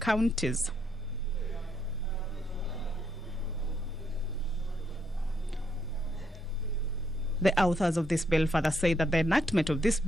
The authors of this bill further say that the enactment of this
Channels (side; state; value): both; normal; correlation 0.75